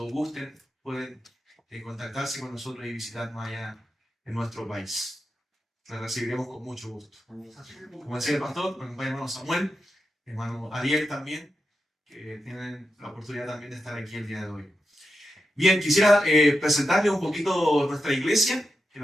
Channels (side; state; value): both; normal; correlation 0.88